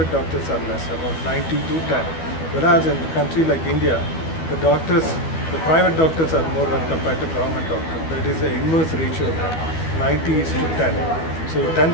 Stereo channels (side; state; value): right; late; 12 ms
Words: doctors are less, about 90 to 10. Whereas in a country like India, the private doctors are more than compared to government doctors. That is the inverse ratio there, 90 is to 10. So